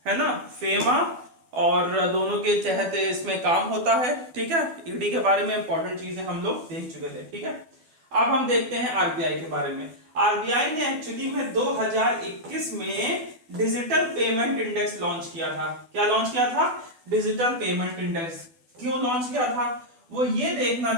है ना, फेमा और दोनों के तहत इसमें काम होता है। ठीक है, ईडी के बारे में इंपॉर्टेंट चीजें हम लोग देख चुके थे। ठीक है, अब हम देखते हैं आरबीआई के बारे में। आरबीआई ने एक्चुअली में 2021 में डिजिटल पेमेंट इंडेक्स लॉन्च किया था। क्या लॉन्च किया था, डिजिटल पेमेंट इंडेक्स। क्यों लॉन्च किया था, वो ये देखना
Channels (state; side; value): late; left; 12 ms